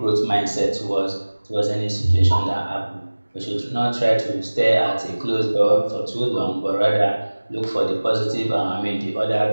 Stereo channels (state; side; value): inverted; both; correlation -1.00